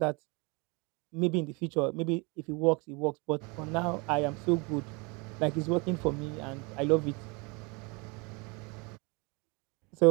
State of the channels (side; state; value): left; quieter; 29.3 dB